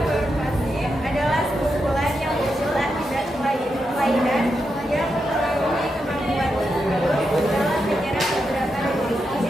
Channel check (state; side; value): normal; both; correlation 0.85